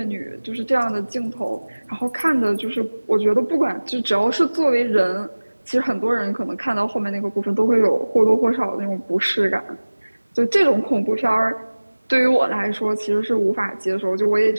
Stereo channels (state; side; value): inverted; both; correlation -1.00